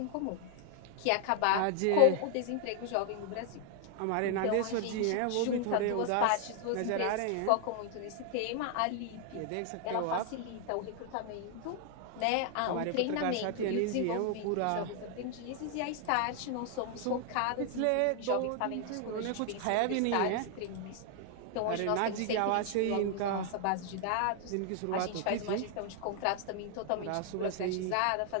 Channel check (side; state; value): both; different; correlation 0.00